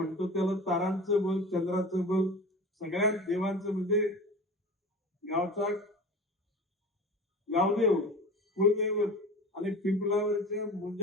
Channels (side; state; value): both; normal; correlation 0.35